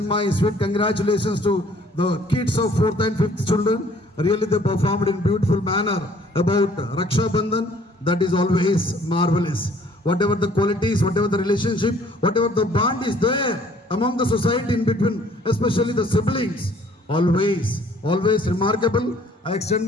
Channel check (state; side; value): normal; both; correlation 0.58